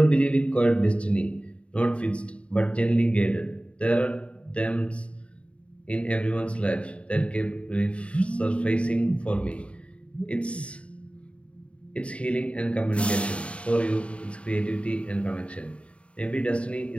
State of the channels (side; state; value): right; late; 0.061 ms